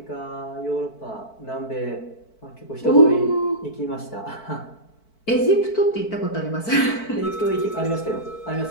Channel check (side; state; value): right; late; 4.5 ms